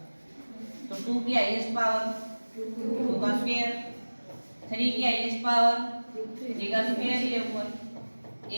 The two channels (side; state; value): both; inverted; correlation -1.00